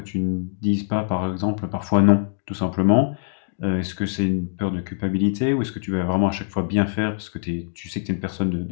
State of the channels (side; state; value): right; silent; digital silence